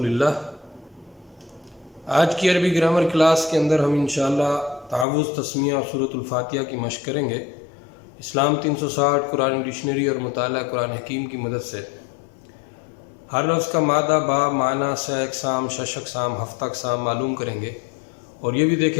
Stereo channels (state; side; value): drops out; right; at 5.1 s